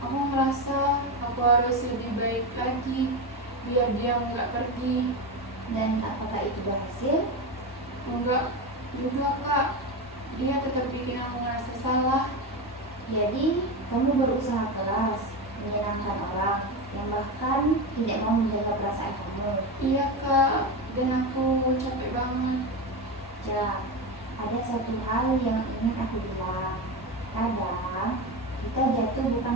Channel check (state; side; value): normal; both; correlation 0.17